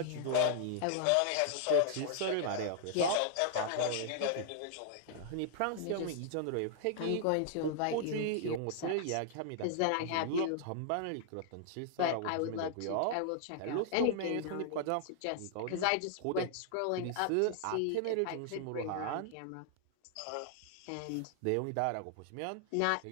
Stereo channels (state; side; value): different; both; correlation -0.01